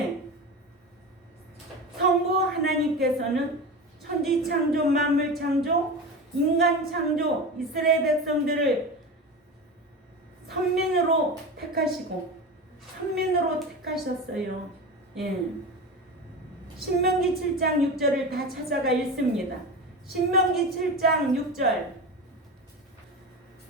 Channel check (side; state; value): both; normal; correlation 0.26